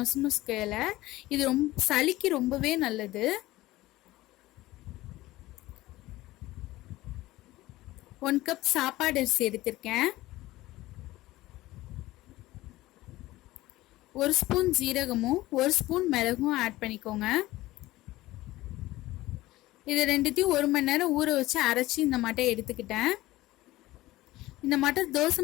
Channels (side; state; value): right; quieter; 17.6 dB